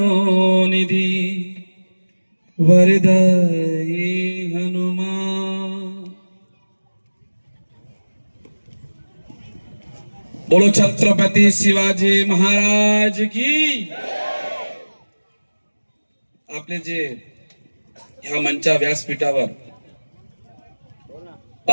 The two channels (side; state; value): both; inverted; correlation -1.00